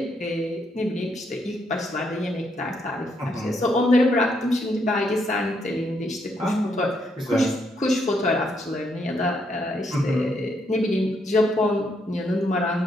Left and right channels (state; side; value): normal; both; correlation 0.76